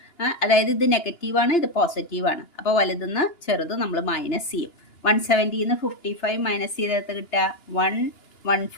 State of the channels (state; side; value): late; right; 2.9 ms